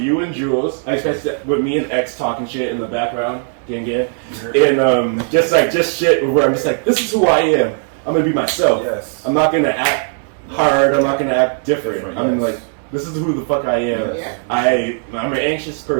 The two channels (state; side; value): silent; left; 68 dB below the other